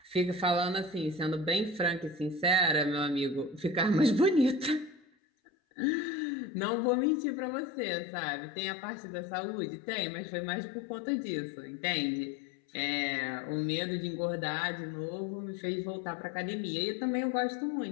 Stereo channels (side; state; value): right; drops out; at 5.0 s